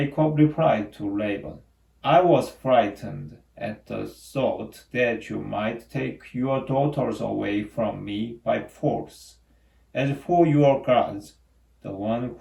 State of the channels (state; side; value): identical; both; correlation 1.00